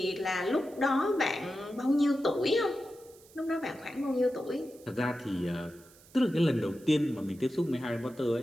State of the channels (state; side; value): noise; right; hiss, 25 dB below the sound